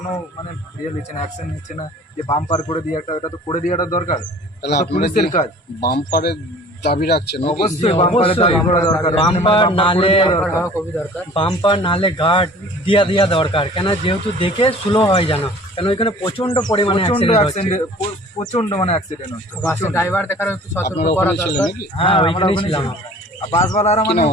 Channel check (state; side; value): normal; both; correlation 0.47